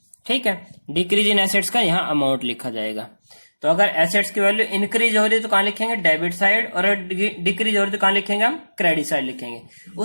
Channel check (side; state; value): both; inverted; correlation -1.00